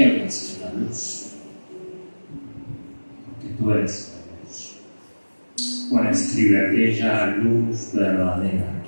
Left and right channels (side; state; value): both; inverted; correlation -1.00